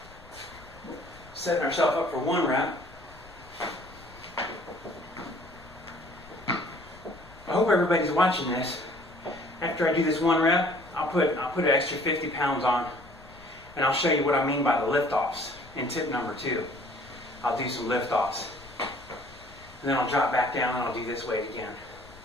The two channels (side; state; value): left; noise; rumble, 22 dB below the sound